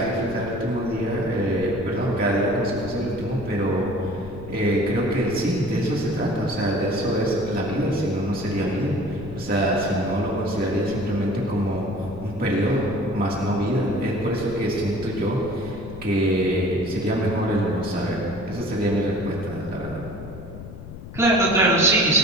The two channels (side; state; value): left; noise; rumble, 13 dB below the sound